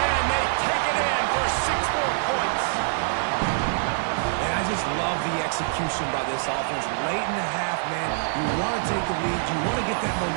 they take it in for 6 more points. And I just love the execution by this offense. Late in the half, man, you want to take the lead. You want to get that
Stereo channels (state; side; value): silent; left; digital silence